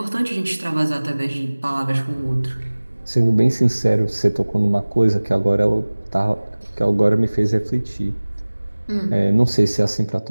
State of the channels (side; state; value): both; inverted; correlation -1.00